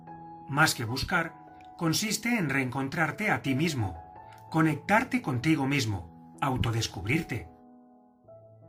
Más que buscar, consiste en reencontrarte a ti mismo, conectarte contigo mismo, autodescubrirte.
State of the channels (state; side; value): identical; both; correlation 1.00